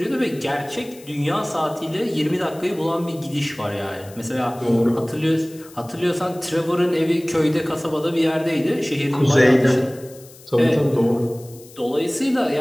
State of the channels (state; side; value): noise; left; hiss, 22 dB below the sound